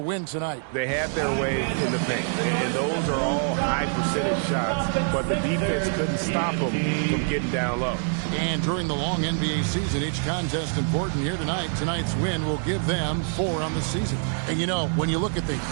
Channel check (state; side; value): silent; left; 61 dB below the other